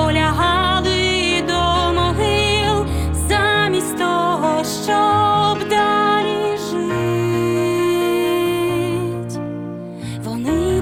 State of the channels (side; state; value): both; identical; correlation 1.00